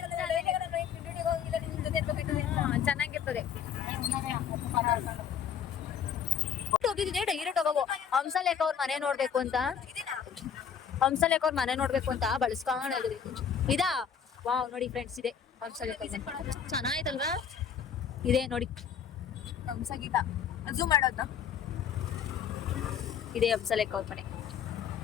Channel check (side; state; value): right; quieter; 7.8 dB